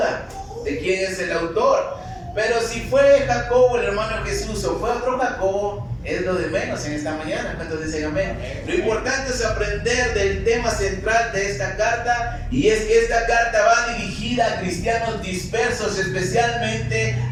de quién es el autor. Pero si fue Jacobo, el hermano de Jesús, o fue otro Jacobo, es lo de menos en esta mañana. ¿Cuántos dicen amén? Lo importante es aprender del tema central de esta carta, y es que esta carta va dirigida a cristianos dispersos, especialmente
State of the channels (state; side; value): identical; both; correlation 1.00